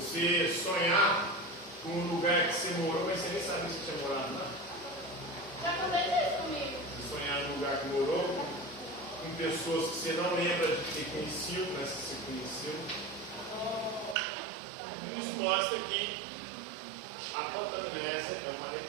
sonhar com um lugar que você morou, mas você nem sabia que você tinha morado lá. Já aconteceu isso comigo. Você sonhar num lugar que morou, com pessoas que você não lembra de ter conhecido, mas que você conheceu. Isso mostra que a fantomnese é uma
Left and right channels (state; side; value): drops out; left; at 14.2 s